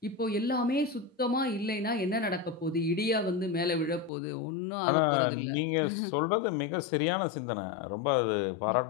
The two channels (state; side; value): drops out; right; at 4.1 s